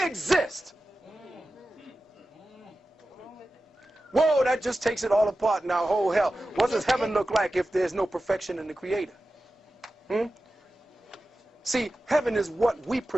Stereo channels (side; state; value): both; normal; correlation 0.94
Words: exist. Whoa, that just takes it all apart now. Oh, hell. What does heaven look like if there's no perfection in the Creator? See, heaven is what we